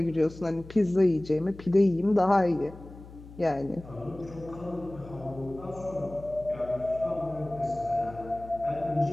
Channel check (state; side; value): noise; left; hum, 17 dB below the sound